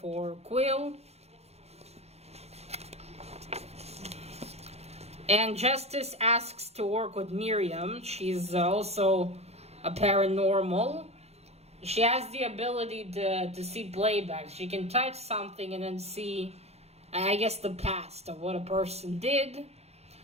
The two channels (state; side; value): late; left; 0.31 ms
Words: Quill. And Justice asks to work with Miriam. She's also a paranormal. She has the ability to see playback. She can touch something and then see, I guess, the past of what a person did.